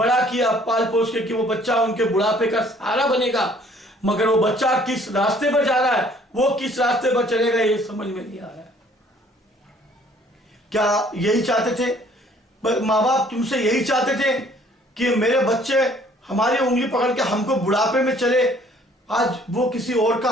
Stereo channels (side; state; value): both; normal; correlation 0.58